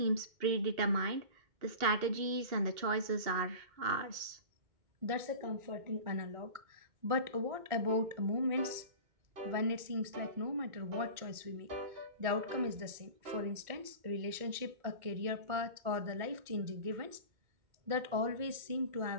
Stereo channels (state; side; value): late; left; 2.1 ms